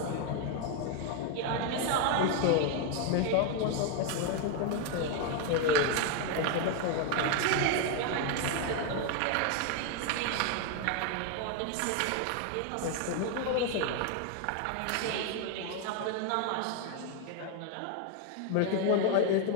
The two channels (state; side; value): different; both; correlation 0.01